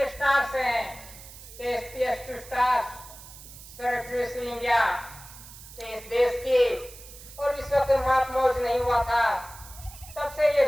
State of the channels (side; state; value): right; noise; hiss, 17 dB below the sound